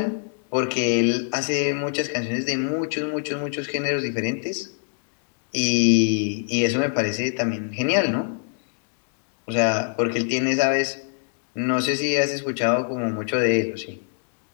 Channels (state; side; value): silent; right; digital silence